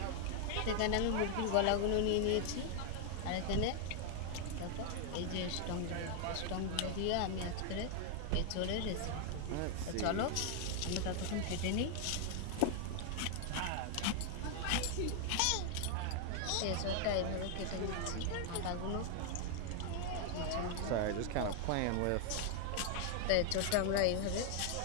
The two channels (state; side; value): different; both; correlation 0.00